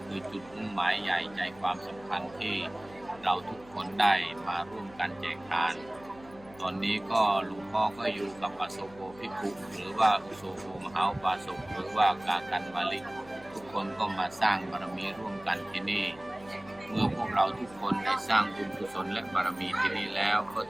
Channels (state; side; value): noise; left; hum, 22 dB below the sound